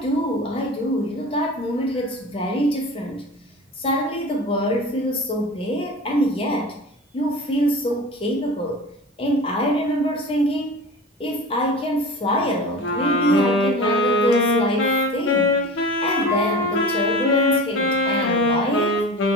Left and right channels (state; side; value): normal; both; correlation 0.34